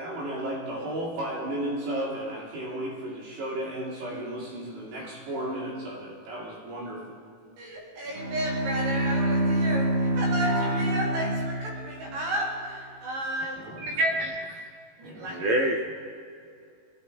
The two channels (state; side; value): late; left; 18 ms